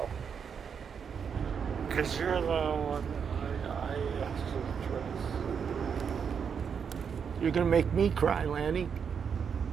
Because you're the one I actually trust. You're going to make me cry, Lanny.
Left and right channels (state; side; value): quieter; left; 6.9 dB